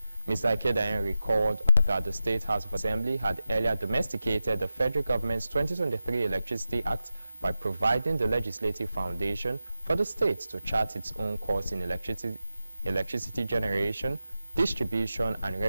Mr. Ekedayen recalled that the State House of Assembly had earlier domesticated the federal government's 2023 Electricity Act by providing the legislative foundation for the state to chart its own course in electricity generation, distribution, and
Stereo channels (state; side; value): inverted; both; correlation -0.93